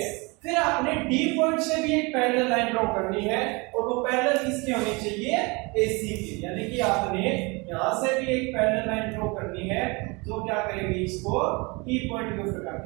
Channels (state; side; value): quieter; left; 27.4 dB